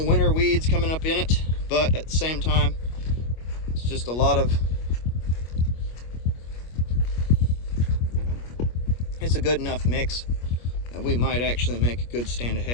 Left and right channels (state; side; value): late; right; 25 ms